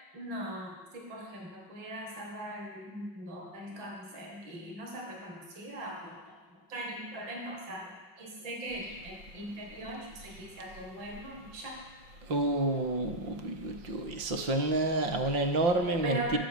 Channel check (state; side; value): late; left; 5.5 ms